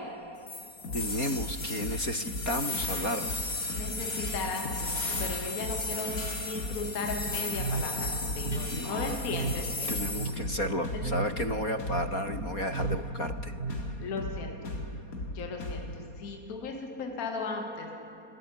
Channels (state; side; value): late; right; 4.2 ms